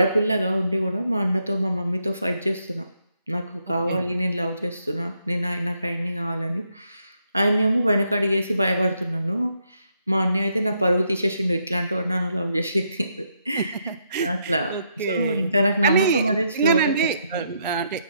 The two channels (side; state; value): both; inverted; correlation -0.77